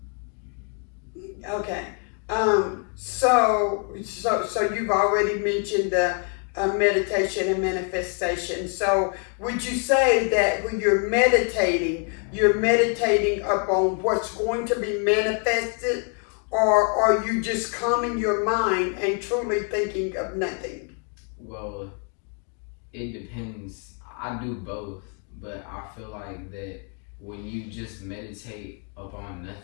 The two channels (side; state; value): right; quieter; 40.0 dB